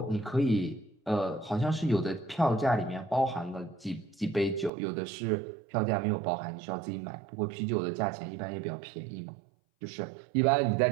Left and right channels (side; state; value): left; drops out; at 4.7 s